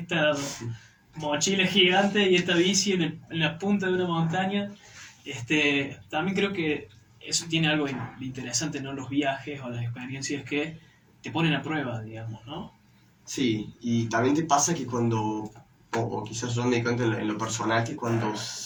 mochila gigante y esta bici en la punta de una montaña. También creo que eso tiene algo interesante, ¿no? Los viajes o las experiencias que te ponen a prueba, digamos, ¿no? Sí, y también te pasa que cuando, o quizás yo me di cuenta en lo personal, que cuando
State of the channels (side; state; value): both; identical; correlation 1.00